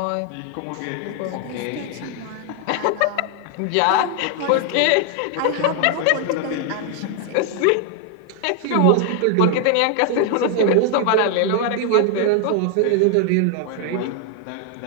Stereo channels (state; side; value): different; both; correlation 0.00